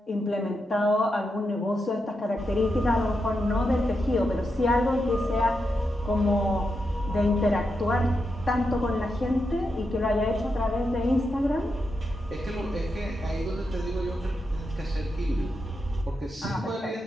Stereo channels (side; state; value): both; normal; correlation 0.86